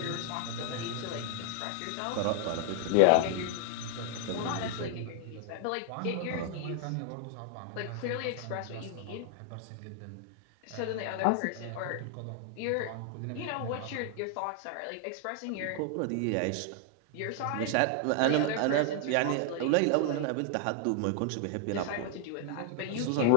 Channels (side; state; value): both; different; correlation 0.00